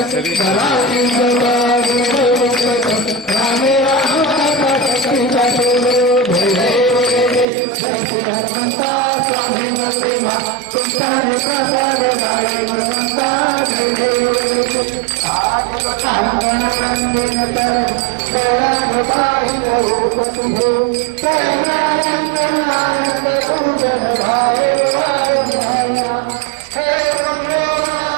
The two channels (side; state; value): left; drops out; at 7.5 s